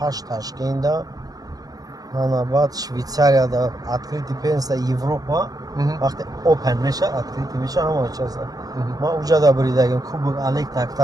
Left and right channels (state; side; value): late; left; 0.18 ms